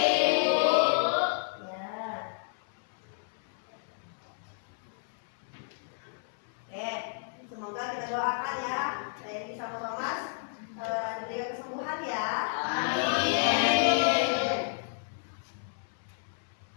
Bu. Ya. Oke, semoga kita doakan ya Reni sama Thomas diberikan kesembuhan ya. Amin.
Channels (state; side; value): silent; right; 57 dB below the other